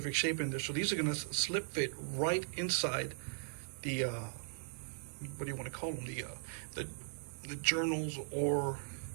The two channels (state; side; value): silent; left; digital silence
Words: shape in there, so these are going to slip fit right inside the what do you want to call them, the journals or